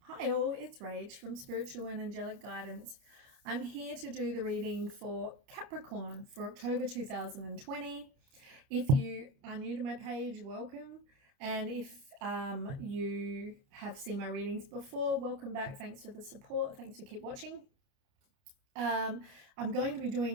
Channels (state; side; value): late; left; 29 ms